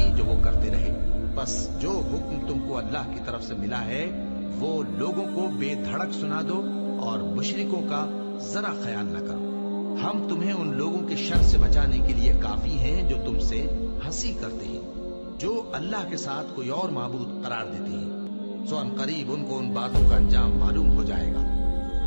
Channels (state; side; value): inverted; both; correlation -1.00